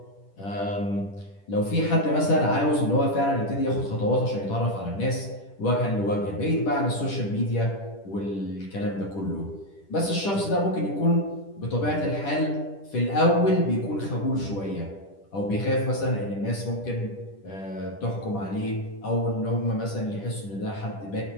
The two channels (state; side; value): late; right; 10 ms